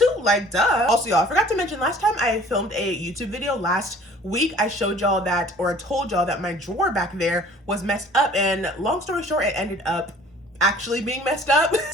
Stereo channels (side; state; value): both; normal; correlation 0.51